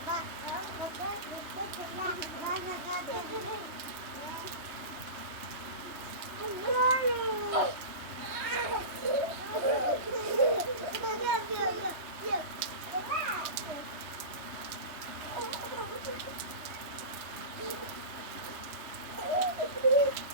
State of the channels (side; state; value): left; late; 3.1 ms